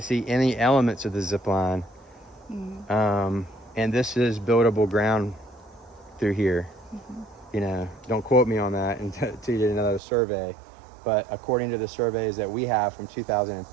see any elements of the zip line. And this is buildable ground through here. You know, don't quote me on that until you did another survey. But according to the surveys that we have from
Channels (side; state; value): left; drops out; at 10.0 s